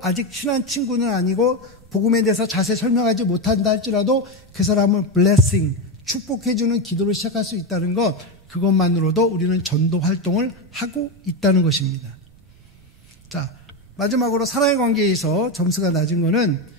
아직 친한 친구는 아니고 복음에 대해서 자세히 설명하지 못한다 할지라도 그 사람을 blessing, 축복해주는 기도를 시작할 수 있다는 것, 그것만으로도 우리는 전도 활동을 하고 있다는 것입니다. 자, 마지막으로 사랑의 관계에서 점수가 낮은 거는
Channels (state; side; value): noise; right; rumble, 27 dB below the sound